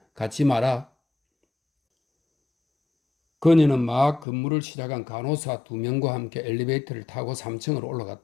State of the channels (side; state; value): right; drops out; at 4.2 s